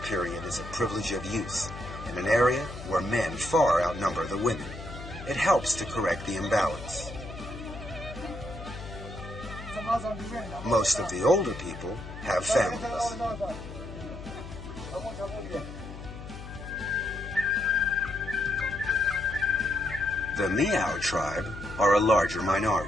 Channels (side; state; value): left; noise; hum, 12 dB below the sound